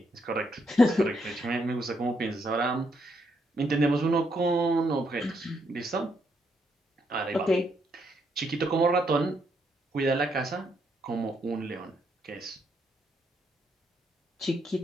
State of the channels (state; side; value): normal; both; correlation 0.76